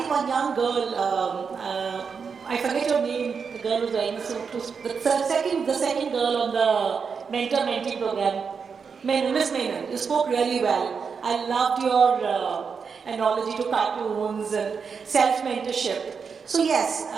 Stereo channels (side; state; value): left; quieter; 5.8 dB